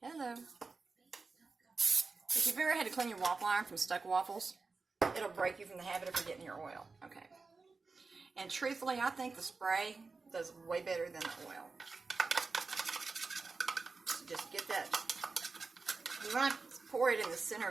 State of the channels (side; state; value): left; quieter; 4.2 dB